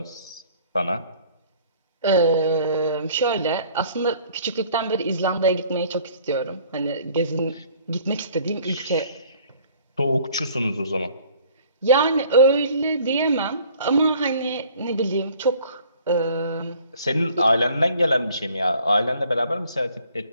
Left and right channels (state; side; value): inverted; both; correlation -0.54